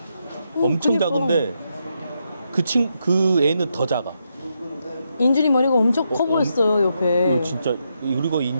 엄청 그러니까. 작은데 그 애는 더 작아. 인준이 머리가 엄청 커 보였어요 옆에. 진짜. 그리고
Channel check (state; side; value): inverted; both; correlation -0.82